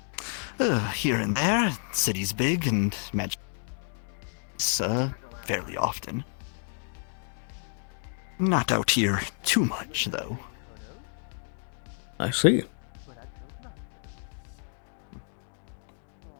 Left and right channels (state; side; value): silent; right; digital silence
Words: Here and there. City's big and magic. Fairly often. Not out here too much, though. I see.